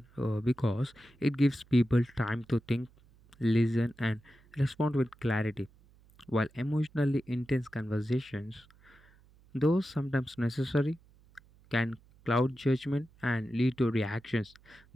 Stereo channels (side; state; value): right; noise; hum, 28 dB below the sound